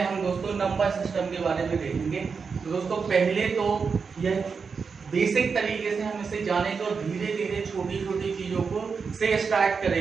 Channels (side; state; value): left; quieter; 5.4 dB